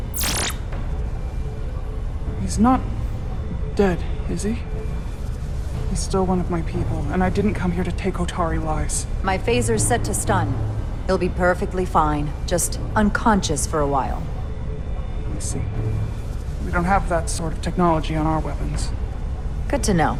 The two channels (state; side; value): identical; both; correlation 1.00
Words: He's not dead, is he? He's still one of my people, and I didn't come here to take Hotari lives. My phaser's set to stun. He'll be perfectly fine, just unconscious for a while. I see. We don't have that sort of technology on our weapons. Good to know.